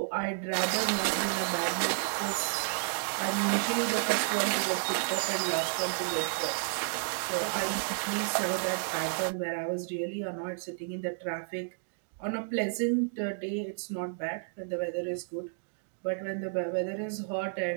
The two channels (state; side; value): silent; left; digital silence